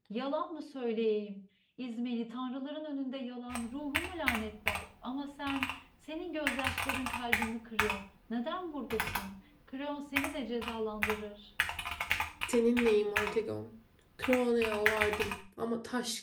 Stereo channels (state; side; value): identical; both; correlation 1.00